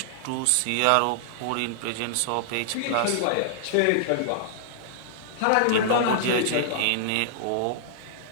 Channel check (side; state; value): both; different; correlation -0.01